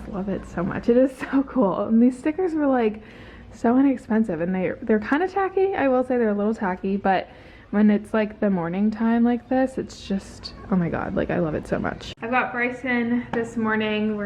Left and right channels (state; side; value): identical; both; correlation 1.00